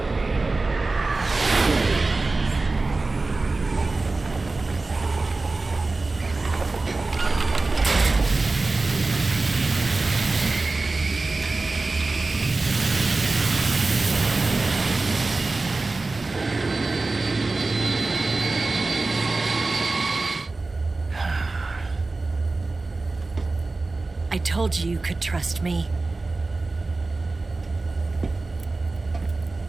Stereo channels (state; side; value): quieter; left; 3.5 dB